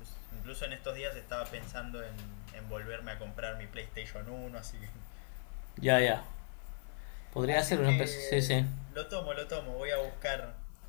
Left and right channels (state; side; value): silent; right; digital silence